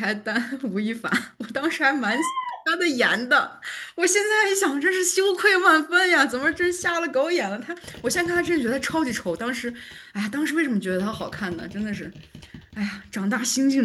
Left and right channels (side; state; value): both; identical; correlation 1.00